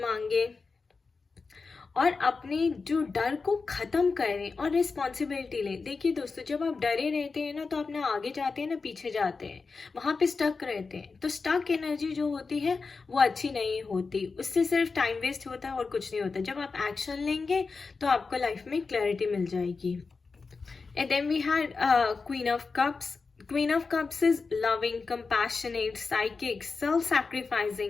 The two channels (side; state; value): right; quieter; 4.5 dB